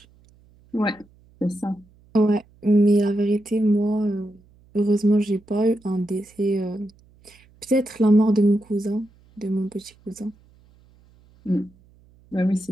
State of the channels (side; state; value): right; noise; hum, 30 dB below the sound